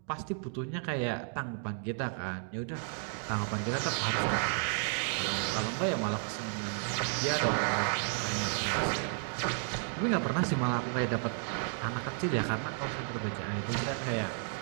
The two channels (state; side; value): silent; left; 56 dB below the other